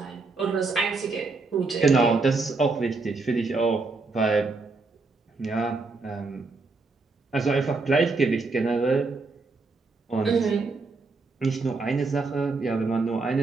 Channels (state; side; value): quieter; left; 3.8 dB